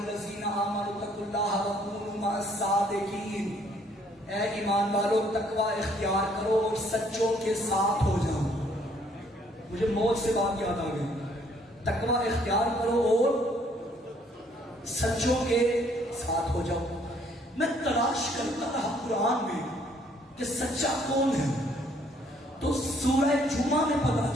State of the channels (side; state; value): both; normal; correlation 0.64